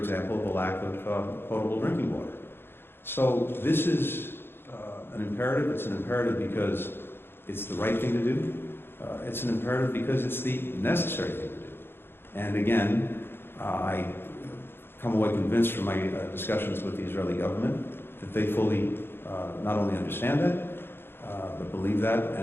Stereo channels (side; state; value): right; late; 0.11 ms